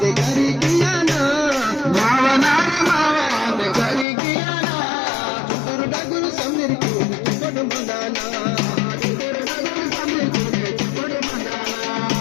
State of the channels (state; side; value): drops out; right; at 4.0 s